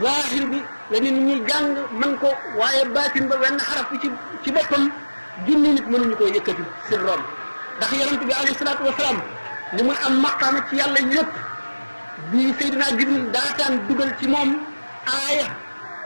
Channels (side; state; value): both; inverted; correlation -1.00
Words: zahir bi la nit ñi jàng mën ko waaye baatin ba wenn xaraf bi ci boppam junni nit mënuñu koo yëkkati sirroom ndax yonent bi alayhi salaatu wasalaam li muy am maqaama ci yàlla yëpp bi Seydina Jibril daataan dugal ci moom aaya